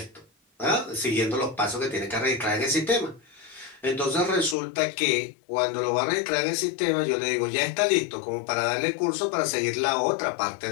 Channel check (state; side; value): drops out; right; at 4.5 s